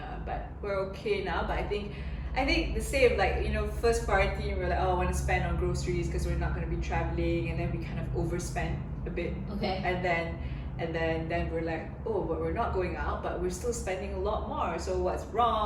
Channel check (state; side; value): identical; both; correlation 1.00